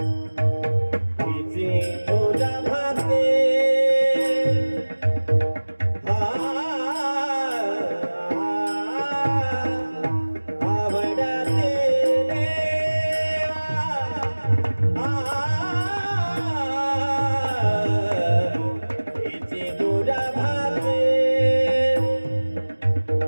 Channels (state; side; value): inverted; both; correlation -1.00